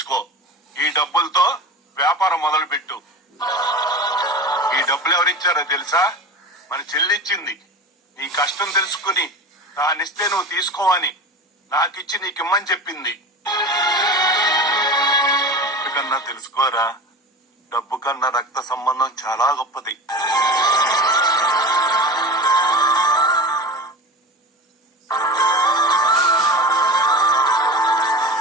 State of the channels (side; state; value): both; normal; correlation 0.31